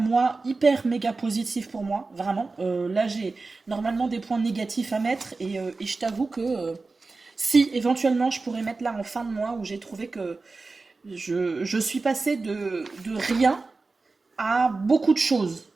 hyper méga positif pour moi, vraiment. Là, j'ai normalement des points négatifs à mettre, et je t'avoue que si éventuellement je pourrais mettre là en fin de mois où j'ai trouvé que je suis passée de rien à beaucoup de choses.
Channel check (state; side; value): quieter; left; 3.8 dB